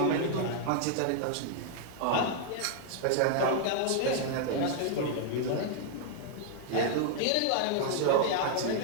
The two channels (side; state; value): both; different; correlation -0.01